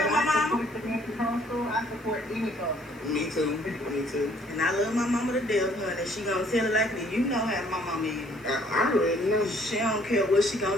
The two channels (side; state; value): left; noise; hiss, 28 dB below the sound